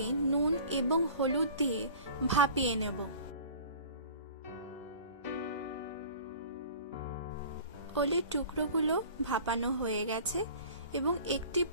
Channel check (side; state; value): both; inverted; correlation -0.43